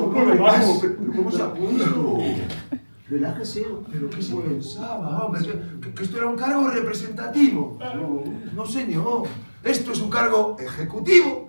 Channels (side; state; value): both; inverted; correlation -1.00